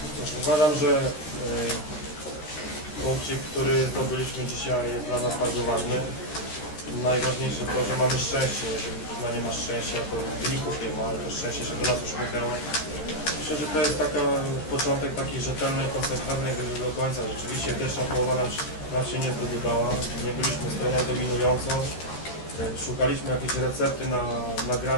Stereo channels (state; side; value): late; right; 13 ms